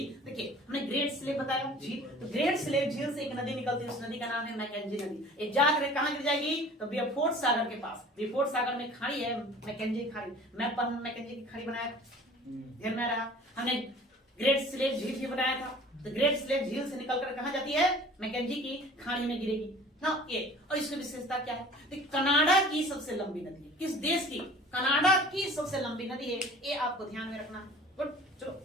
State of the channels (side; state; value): both; normal; correlation 0.46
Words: देखिए हमने ग्रेट स्लेव बताया झील, तो ग्रेट स्लेव झील से एक नदी निकलती है, उस नदी का नाम है मैकेंजी नदी। ये जाकर कहाँ गिर जाएगी? तो बियरफोर्ड सागर के पास, बियरफोर्ड सागर में खाड़ी है मैकेंजी खाड़ी। मैप पर मैकेंजी की खाड़ी बनाया, ध्यान में रहा। हमने ग्रेट स्लेव झील भी बनाया था, तो ग्रेट स्लेव झील से निकलकर कहाँ जाती है? मैकेंजी की खाड़ी में गिरेगी ना ये। और इसकी विशेषता क्या है? तो कनाडा की सबसे लंबी नदी है, किस देश की? कनाडा की सबसे लंबी नदी है, ये आपको ध्यान में रखना है। गुड, चलो